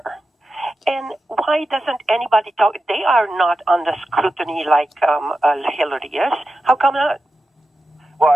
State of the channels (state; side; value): normal; both; correlation 0.91